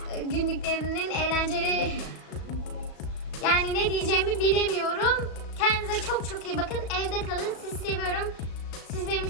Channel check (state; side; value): late; right; 36 ms